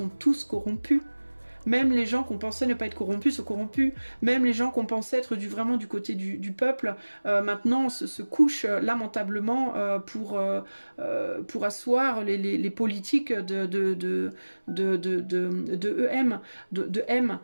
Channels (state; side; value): inverted; both; correlation -1.00